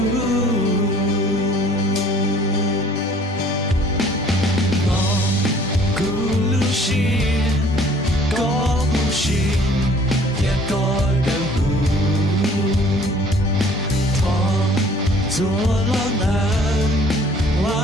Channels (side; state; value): both; normal; correlation 0.55